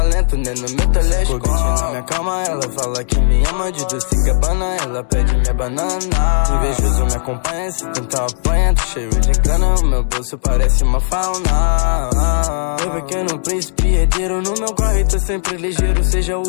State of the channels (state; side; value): silent; right; digital silence